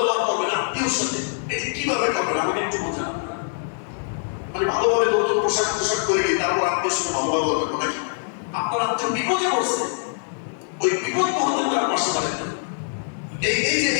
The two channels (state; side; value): silent; right; 63 dB below the other